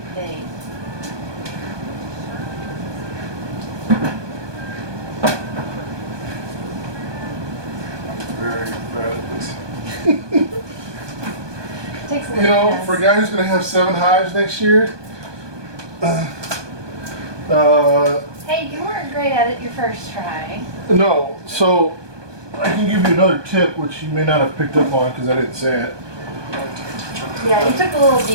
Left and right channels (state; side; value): late; left; 1.2 ms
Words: thing. I'm very bad at this. Takes a You little know, for a guy who's going to have 7 hives next year, Hey, you weren't great at it your first try. no. So I can give you another tip, which you may not have picked up on because I didn't say it. Yeah, you took a little